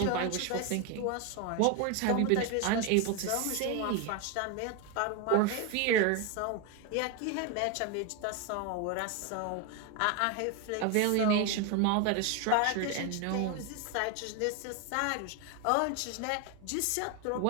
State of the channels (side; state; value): both; different; correlation 0.02